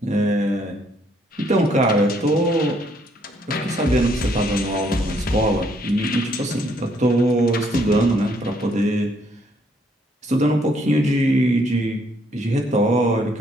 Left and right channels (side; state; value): both; normal; correlation 0.69